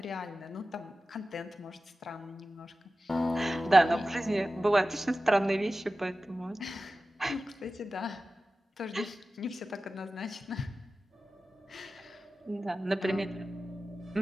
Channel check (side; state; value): both; normal; correlation 0.95